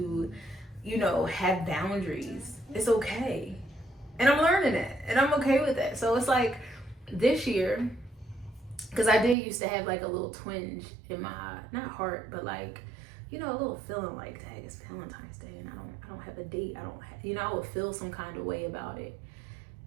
have boundaries. It's okay. And I'm learning it. And I'm okay with that. So it's like, this year, because I did used to have like a little twinge in my, not heart, but like, a little feeling like, dang, it's Valentine's Day and I don't have a date. I would feel some kind of way about it.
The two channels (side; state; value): left; drops out; at 9.3 s